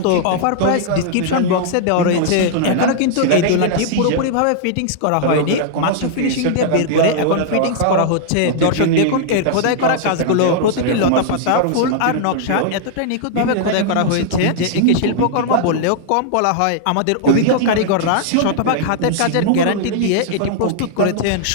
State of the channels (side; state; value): both; different; correlation -0.01